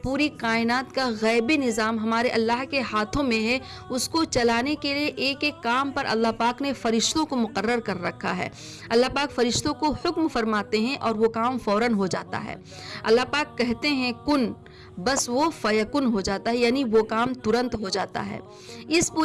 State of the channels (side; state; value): both; identical; correlation 1.00